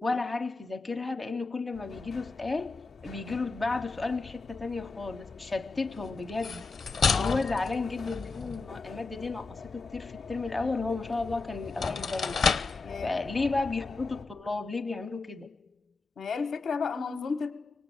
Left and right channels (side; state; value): right; quieter; 3.9 dB